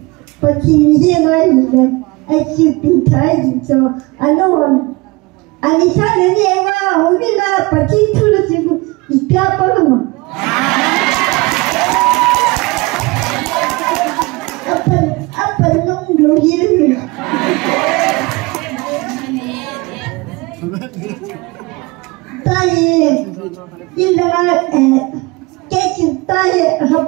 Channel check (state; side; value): quieter; left; 24.2 dB